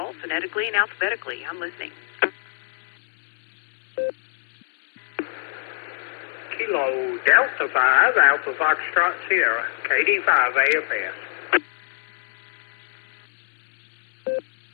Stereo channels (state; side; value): silent; right; digital silence